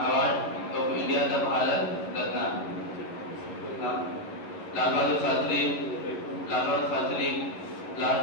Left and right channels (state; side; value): late; right; 11 ms